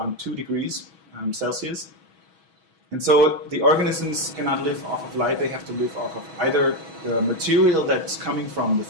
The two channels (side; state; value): left; late; 6.2 ms